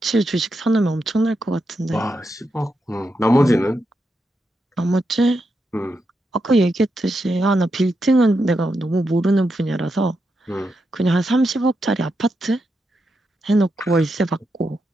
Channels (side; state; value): both; normal; correlation 0.85